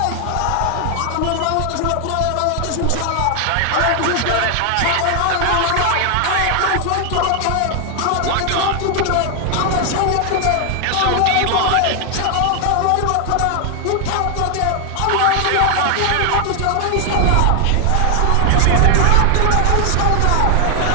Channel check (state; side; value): different; both; correlation 0.00